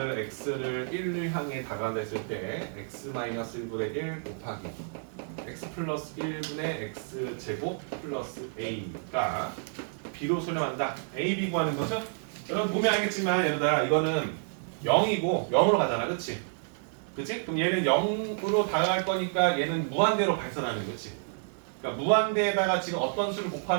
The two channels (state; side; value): silent; left; 56 dB below the other